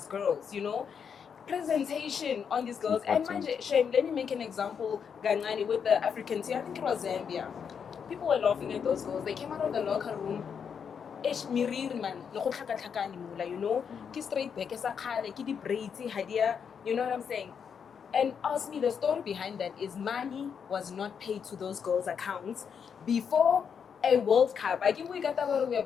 girls, you know? Presentation on these girls. And Shame, let me make an example, Ganani, with the African team. I think it was Zambia. People were laughing at those girls. They came out of the locker room. You know? Ki straight back, ki di braids, you know what I'm saying? And ask me, the story behind that is money was not paid to those girls' accounts before a World Cup. I give we got that we are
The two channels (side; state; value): right; quieter; 7.0 dB